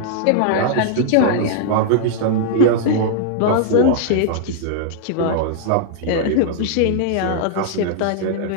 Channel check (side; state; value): both; different; correlation -0.01